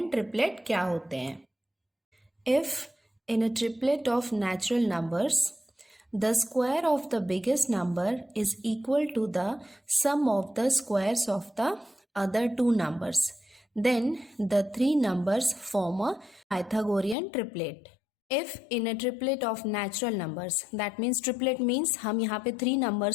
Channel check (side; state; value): right; drops out; at 17.2 s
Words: ट्रिपलेट क्या होते हैं। If in a triplet of natural numbers the square of the biggest number is equal to the sum of the squares of the other two numbers, then the three numbers form a Pythagorean triplet. If in a triplet of natural numbers, that means triplet means हम यहाँ पे 3